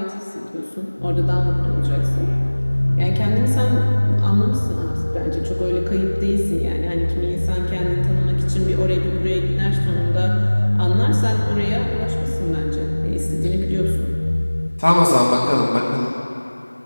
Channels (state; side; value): inverted; both; correlation -1.00